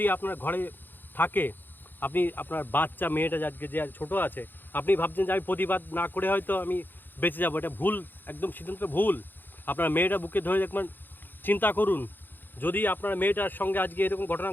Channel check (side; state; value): right; late; 0.092 ms